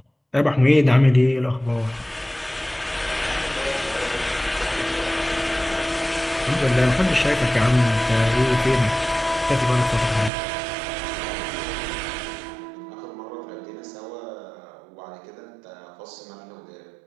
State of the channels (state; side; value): drops out; left; at 10.3 s